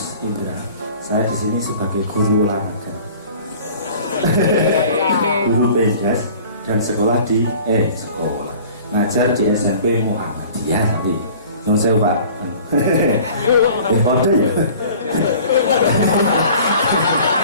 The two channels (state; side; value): inverted; both; correlation -0.47